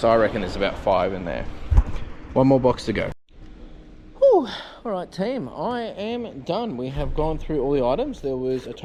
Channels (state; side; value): identical; both; correlation 1.00